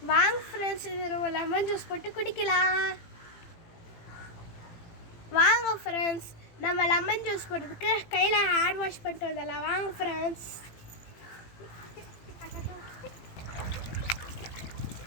வாங்க ஃப்ரெண்ட்ஸ், இது நம்ம லெமன் ஜூஸ் போட்டு குடிக்கலாம். வாங்க ஃப்ரெண்ட்ஸ், நம்ம லெமன் ஜூஸ் போடுறதுக்கு கையில் ஹேர் வாஷ் பண்ணிட்டு வந்துடலாம். வாங்க ஃப்ரெண்ட்ஸ்.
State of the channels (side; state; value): right; late; 18 ms